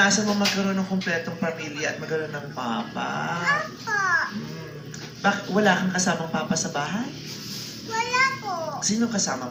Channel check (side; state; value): both; identical; correlation 1.00